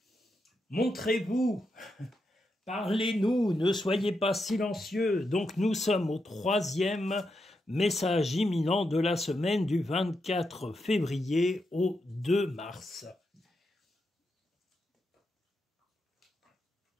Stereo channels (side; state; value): both; normal; correlation 0.84